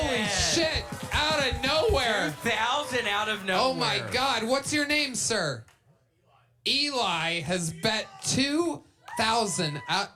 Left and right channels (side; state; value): both; identical; correlation 1.00